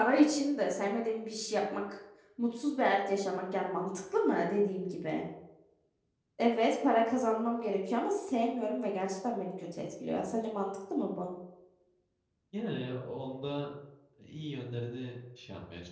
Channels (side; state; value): both; identical; correlation 1.00